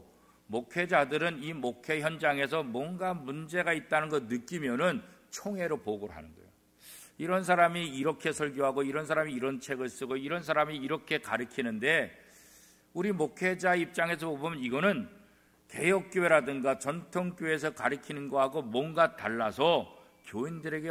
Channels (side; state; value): both; identical; correlation 1.00